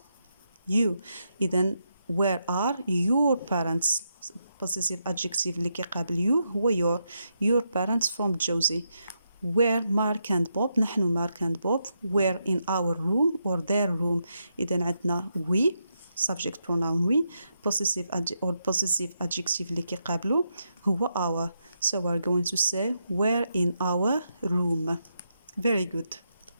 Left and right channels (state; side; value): inverted; both; correlation -0.82